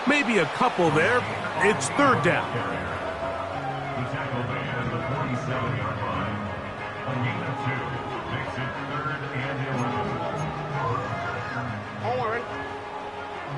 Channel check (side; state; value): both; identical; correlation 1.00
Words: Maybe a couple there. It's third down. The tackle made at the 47-yard line. A gain of 2 makes it 3rd and 11. On one, ready?